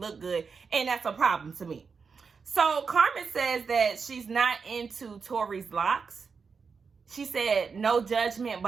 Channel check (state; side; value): quieter; left; 5.4 dB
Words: good, and that's a problem to me. So Carmen says that she's not into Torrey's locks. She said, no judgment,